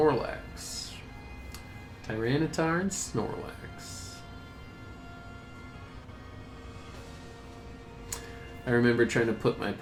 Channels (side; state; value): both; identical; correlation 1.00